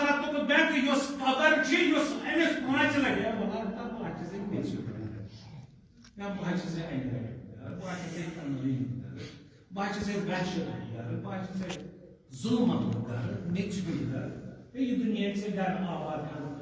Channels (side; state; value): both; identical; correlation 1.00